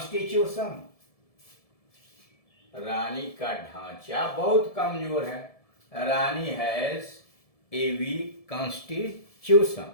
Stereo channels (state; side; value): late; right; 1.7 ms